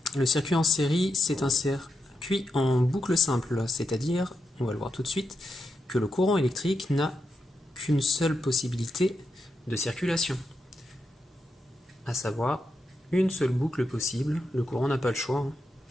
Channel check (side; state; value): both; normal; correlation 0.85